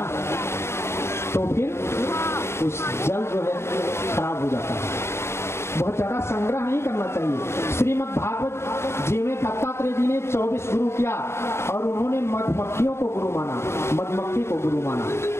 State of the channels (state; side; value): late; right; 0.13 ms